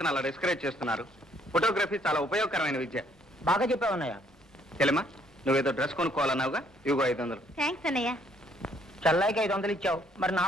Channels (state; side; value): normal; both; correlation 0.66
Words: అలా డిస్కరేజ్ చేస్తున్నారు? ఫోటోగ్రఫీ చాలా ఉపయోగకరమైన విద్య. బాగా చెప్పావన్నయ్య. చెల్లెమ్మా, నువ్వేదో డ్రెస్ కొనుక్కోవాలన్నావుగా, ఇవిగో 500. థ్యాంక్స్ అన్నయ్య. చల్లాయికి 500 ఇచ్చావు, మరి